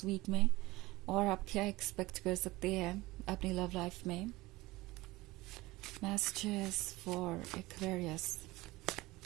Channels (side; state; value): left; quieter; 19.9 dB